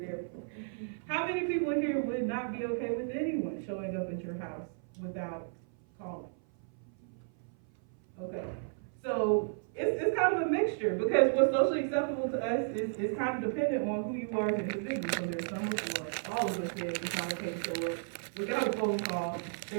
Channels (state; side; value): silent; left; 55 dB below the other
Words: for. How many people in here would not be okay with anyone showing up at your house without calling? Okay. So it's kind of a mixture because what's socially acceptable to us is kind of dependent on who you are as an individual. So there's some of all of us here it's not okay to show up without a phone call.